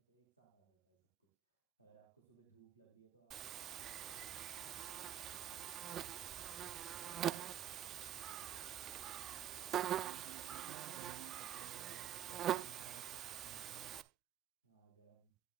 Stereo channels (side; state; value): left; quieter; 11.0 dB